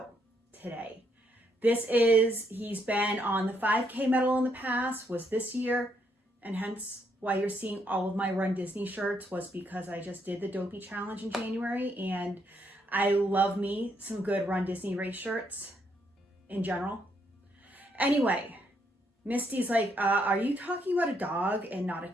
today. He's been on the 5K medal in the past, was this year, and hence why you're seeing all of my Run Disney shirts was because I just did the Dopey Challenge in January, and I love me some good Run Disney race shirts in general. Anyway, Misty's like, are you talking about a dog and not a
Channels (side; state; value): both; normal; correlation 0.74